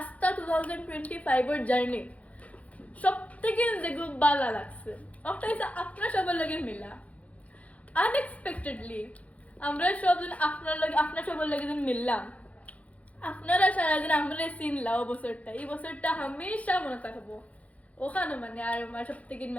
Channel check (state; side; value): late; right; 0.067 ms